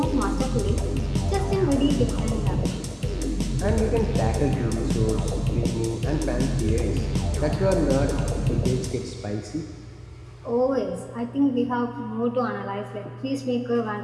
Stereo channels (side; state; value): both; identical; correlation 1.00